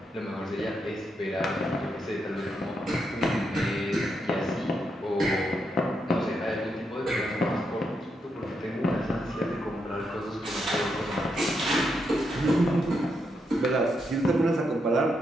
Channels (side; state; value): both; normal; correlation 0.81